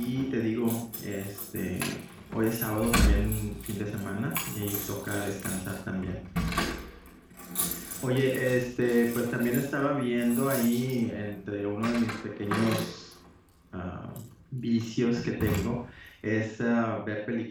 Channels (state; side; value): identical; both; correlation 1.00